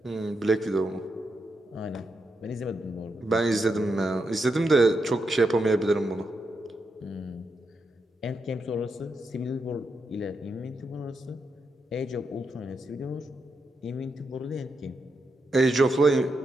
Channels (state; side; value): normal; both; correlation 0.84